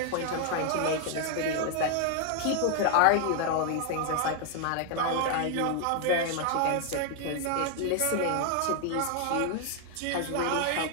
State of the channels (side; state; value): both; different; correlation 0.00